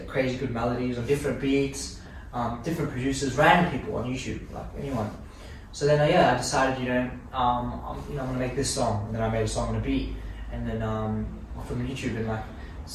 crazy good melodies on different beats, different producers, random people on YouTube, like anyone. So then, I decided, I'm gonna make this song, and then I made a song on a beat, and then from YouTube, and like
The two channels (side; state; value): both; identical; correlation 1.00